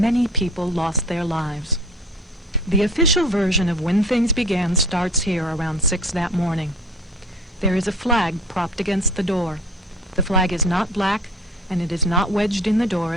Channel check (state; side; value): normal; both; correlation 0.44